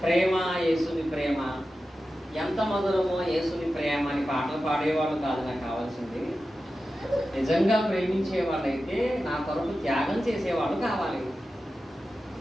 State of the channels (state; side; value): normal; both; correlation 0.93